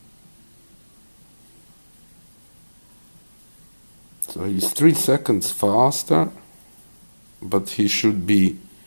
So he's 3 seconds faster, but he should be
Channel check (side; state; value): both; inverted; correlation -1.00